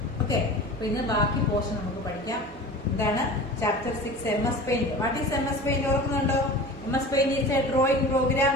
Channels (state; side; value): normal; both; correlation 0.37